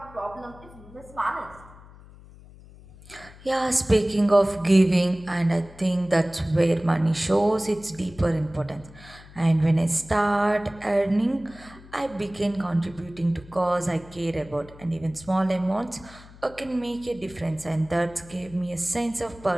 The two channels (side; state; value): left; noise; hum, 21 dB below the sound